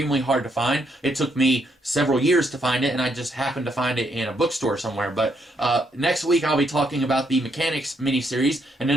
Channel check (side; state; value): both; normal; correlation 0.74